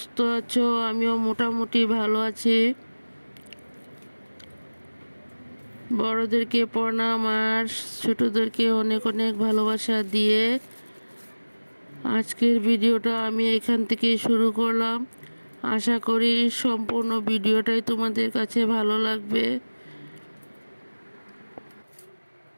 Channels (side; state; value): both; inverted; correlation -1.00